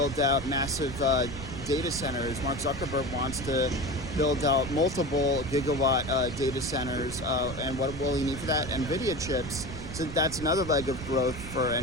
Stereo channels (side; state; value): right; noise; rumble, 10 dB below the sound